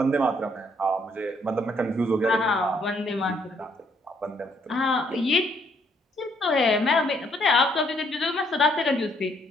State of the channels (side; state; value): both; normal; correlation 0.69